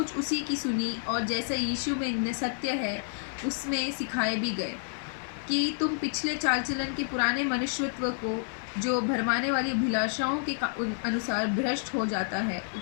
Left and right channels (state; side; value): silent; right; 58 dB below the other